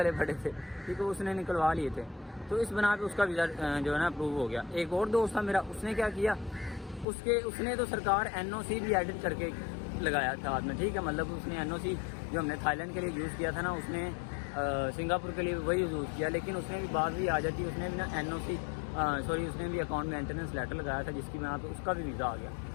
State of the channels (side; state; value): right; drops out; at 7.1 s